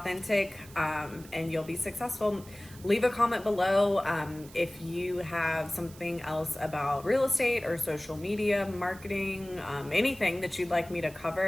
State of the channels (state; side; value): noise; right; hiss, 20 dB below the sound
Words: and you'll be successful. Leave a comment below if you have something else about real estate or social media marketing, anything that you'd like me to